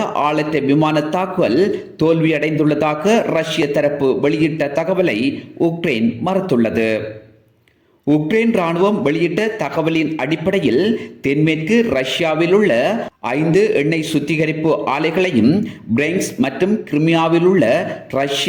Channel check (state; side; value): identical; both; correlation 1.00